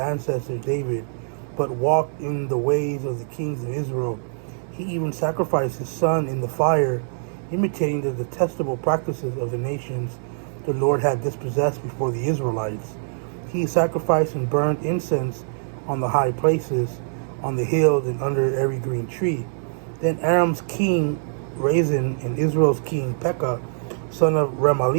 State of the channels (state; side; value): silent; left; digital silence